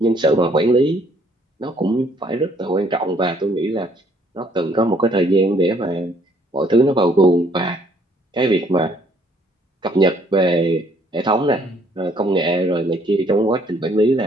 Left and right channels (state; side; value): normal; both; correlation 0.64